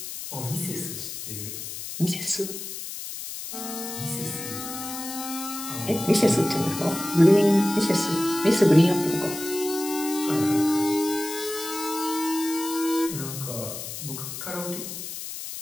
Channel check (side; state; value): left; noise; hiss, 8 dB below the sound